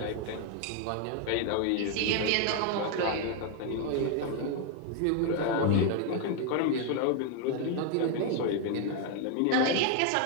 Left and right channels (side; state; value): both; different; correlation 0.00